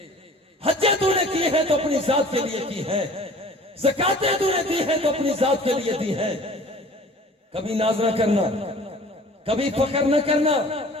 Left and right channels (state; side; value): normal; both; correlation 0.47